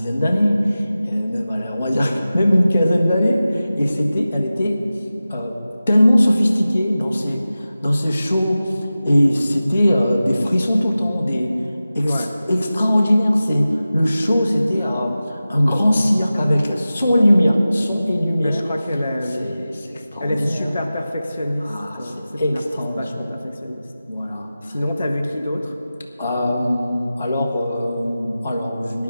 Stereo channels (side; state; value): both; inverted; correlation -0.95